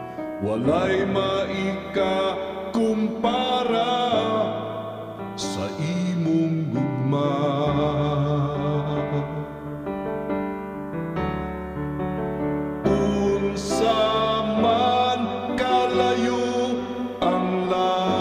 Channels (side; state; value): both; identical; correlation 1.00